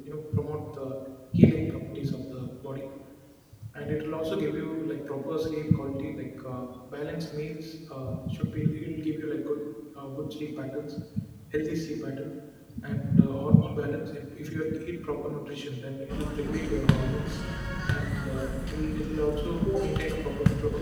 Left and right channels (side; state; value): both; identical; correlation 1.00